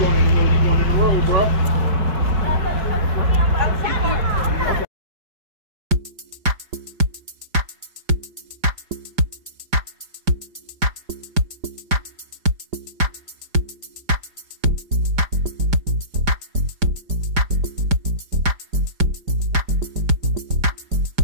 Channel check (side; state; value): left; late; 5.0 ms